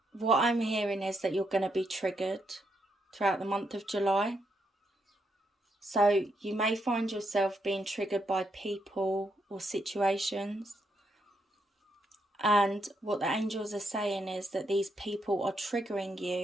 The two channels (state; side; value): normal; both; correlation 0.78